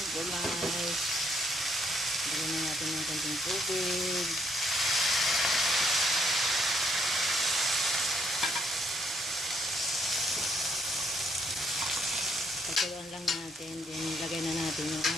gulay. Lagyan na natin ng konting tubig. Pagkuluan lang natin. Then, lagay na natin yung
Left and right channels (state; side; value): normal; both; correlation 0.71